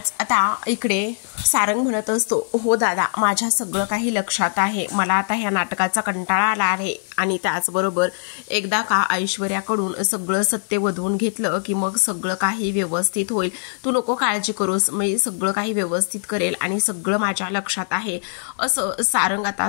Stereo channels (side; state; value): right; silent; digital silence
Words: आता इकडे सारंग म्हणत असतो हो दादा माझ्या सगळं काही लक्षात आहे, मला आता ह्या नाटकाचा कंटाळा आला आहे आणि त्याचबरोबर एकदा का ऐश्वर्याकडून सगळं सत्य वधवून घेतलं की मग सगळं काही व्यवस्थित होईल, तू नको काळजी करूस, मी सगळं काही व्यवस्थित करेल आणि सगळं माझ्या लक्षात आहे असं सारंग आता